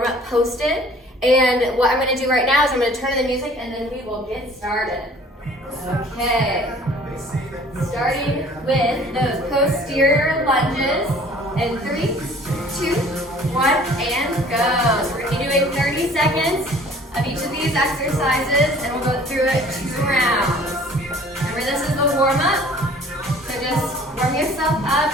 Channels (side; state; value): both; normal; correlation 0.52